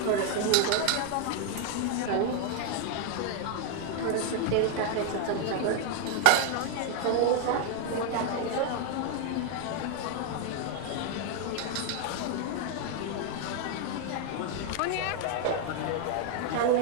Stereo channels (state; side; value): different; both; correlation 0.00